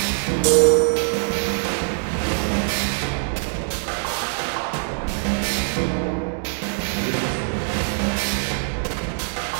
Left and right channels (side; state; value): left; silent; digital silence